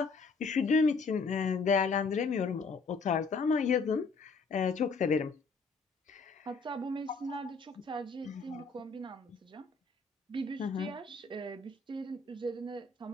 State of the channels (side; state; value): right; quieter; 4.3 dB